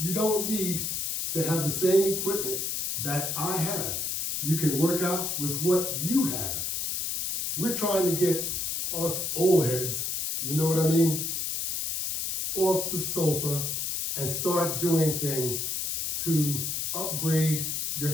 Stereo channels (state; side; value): noise; left; hiss, 1 dB below the sound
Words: don't need to have the same equipment that I have. You can work out with what you have. We're trying to get us old heads, you know what I mean, off the sofa and start doing things to upgrade